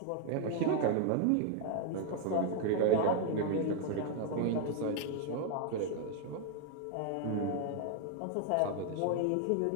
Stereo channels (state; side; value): different; both; correlation 0.00